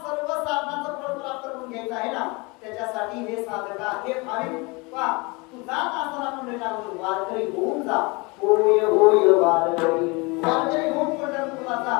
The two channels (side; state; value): right; quieter; 27.1 dB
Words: सर्व साधनाचं फळ प्राप्त करून घ्यायचं आहे ना, त्याच्यासाठी हे साधका, हे भाविक पा तू जात असताना आपण वारकरी होऊन जा. होय होय वारकरी होऊन पंढरपूरला जा.